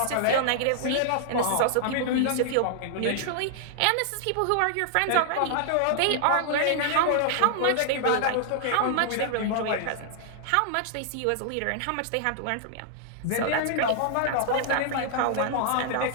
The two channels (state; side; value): different; both; correlation -0.01